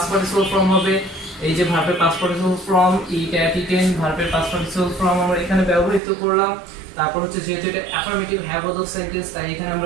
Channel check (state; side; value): drops out; left; at 6.0 s